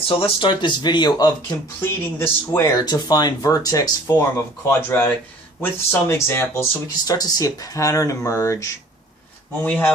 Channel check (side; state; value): both; normal; correlation 0.50